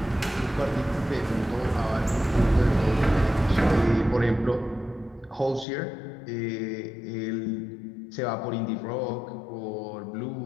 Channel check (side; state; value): right; drops out; at 5.7 s